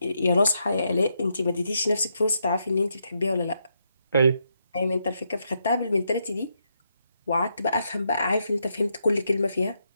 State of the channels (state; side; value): inverted; both; correlation -0.80